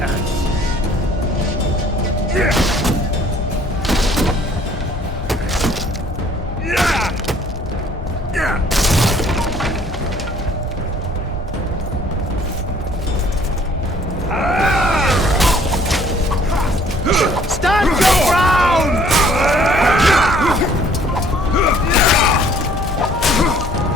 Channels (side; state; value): both; normal; correlation 0.58